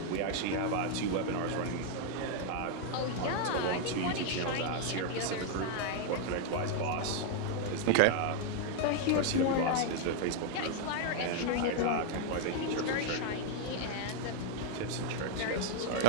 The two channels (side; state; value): both; different; correlation 0.00